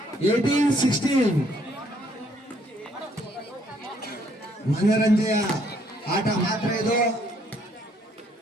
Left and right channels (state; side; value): normal; both; correlation 0.67